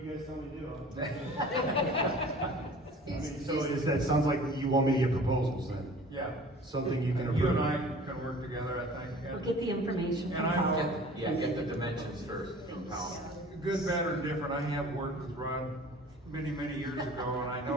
tell me to do. So that sounds like you want me to get proposals then? Yeah. Something you can approve? You and I can work together, I think. We'll get the information And from I Howell. know, Get the dimensions first from Powell. good, bad, or different, I have worked with Rod many, many years ago, and I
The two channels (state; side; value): normal; both; correlation 0.45